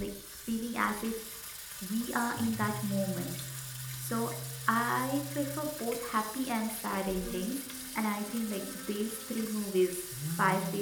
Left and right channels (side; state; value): both; identical; correlation 1.00